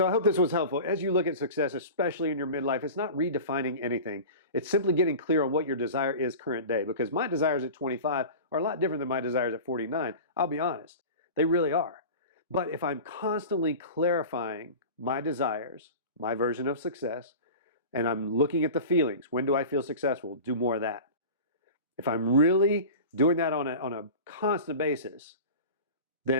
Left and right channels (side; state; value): both; inverted; correlation -0.35